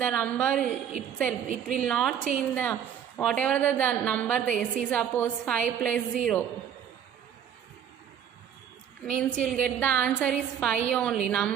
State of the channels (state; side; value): quieter; left; 9.0 dB